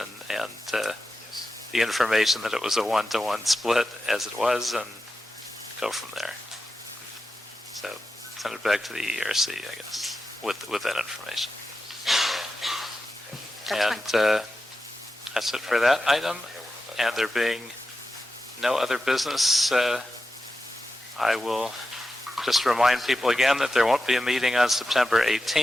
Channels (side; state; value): both; normal; correlation 0.91